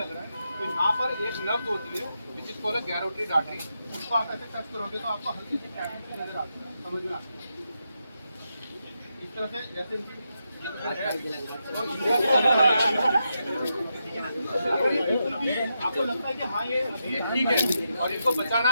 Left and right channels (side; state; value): both; inverted; correlation -0.85